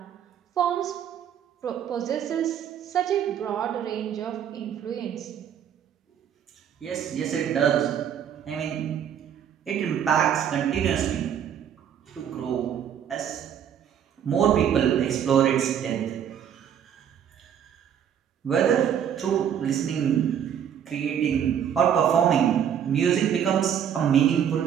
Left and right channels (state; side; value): quieter; left; 9.0 dB